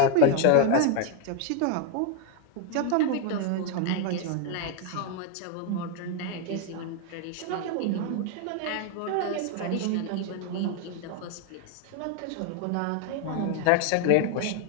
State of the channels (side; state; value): both; different; correlation 0.01